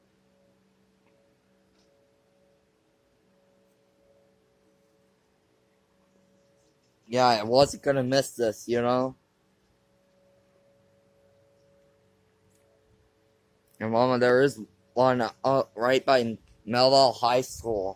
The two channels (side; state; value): both; identical; correlation 1.00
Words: Yeah, I wasn't gonna miss this, you know. And Mama, there is one right by Melville High